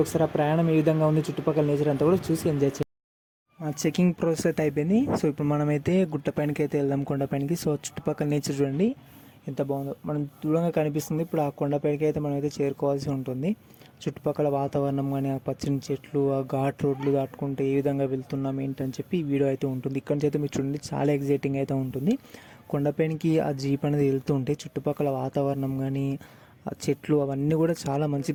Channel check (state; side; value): identical; both; correlation 1.00